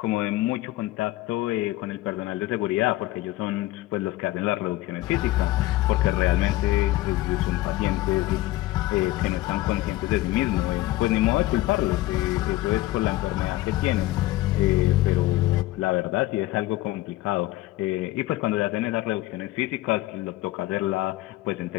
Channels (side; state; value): right; quieter; 17.1 dB